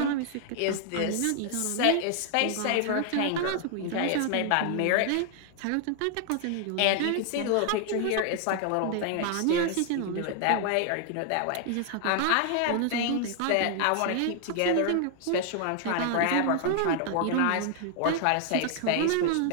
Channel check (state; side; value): different; both; correlation 0.00